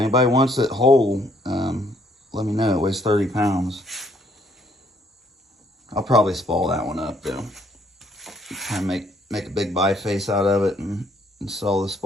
wants it whole, let me know. It weighs 30 pounds. I'll probably spall that one up though. Try and make a big biface out of it and sell the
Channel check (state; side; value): normal; both; correlation 0.66